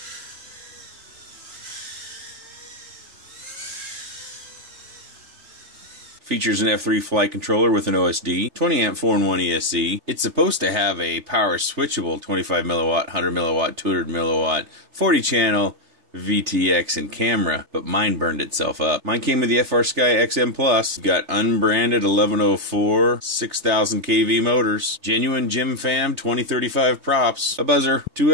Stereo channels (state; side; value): late; left; 3.3 ms